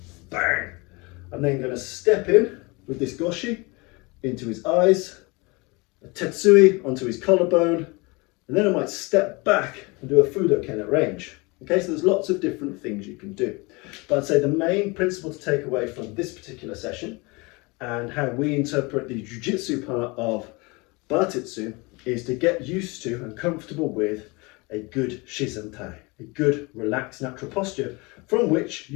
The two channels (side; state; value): right; quieter; 26.4 dB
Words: Bang! I'm then going to step in with this Goshi into his eyes, a Tetsui onto his collarbone, and then I might step back and do a Fudoken at range. Okay, so there's lots of different things you can do. But I'd say the main principle to take away from this particular session and how we interpret the Jiu-Jitsu part of Bartitsu is to get used to and comfortable with a good Shizentai, a good relaxed natural posture from which